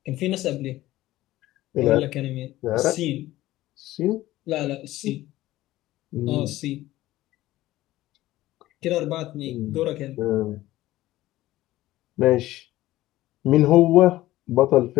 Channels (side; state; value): right; quieter; 16.1 dB